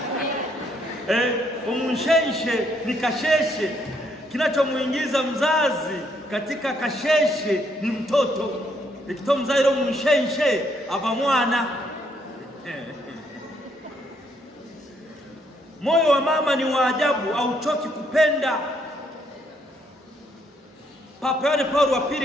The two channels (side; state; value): both; normal; correlation 0.72